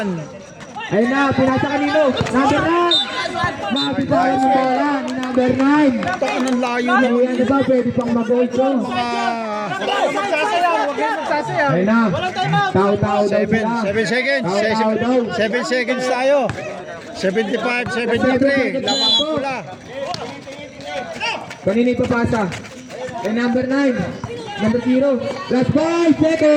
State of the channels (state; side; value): identical; both; correlation 1.00